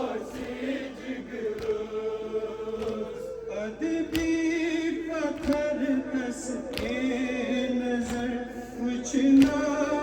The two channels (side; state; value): both; identical; correlation 1.00